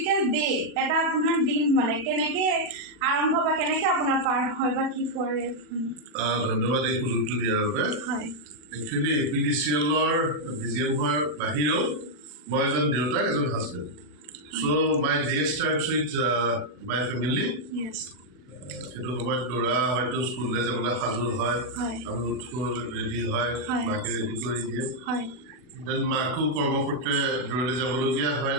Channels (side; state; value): left; late; 40 ms